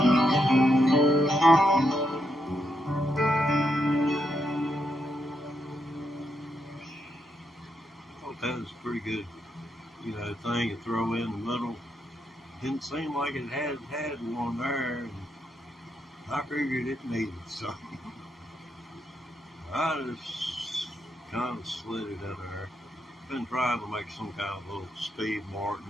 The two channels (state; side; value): normal; both; correlation 0.81